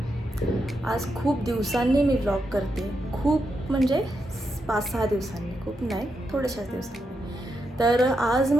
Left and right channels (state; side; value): normal; both; correlation 0.84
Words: आज खूप दिवसांनी मी vlog करते. खूप म्हणजे 5-6 दिवसांनी, खूप नाही, थोड्याशाच दिवसांनी. तर आज